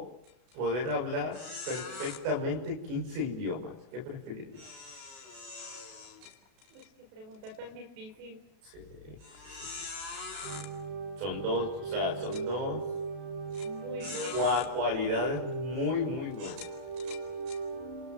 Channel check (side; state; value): left; late; 37 ms